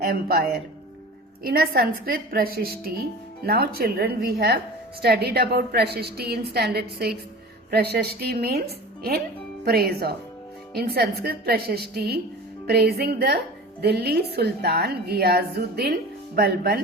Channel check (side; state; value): both; normal; correlation 0.37